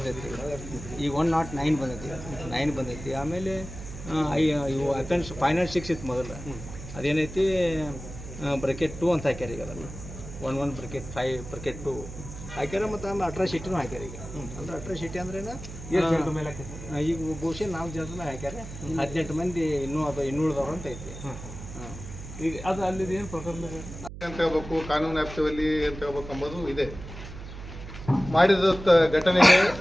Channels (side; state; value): right; noise; hum, 11 dB below the sound